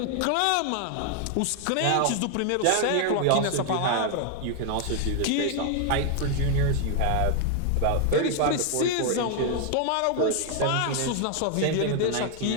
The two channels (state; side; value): different; both; correlation 0.00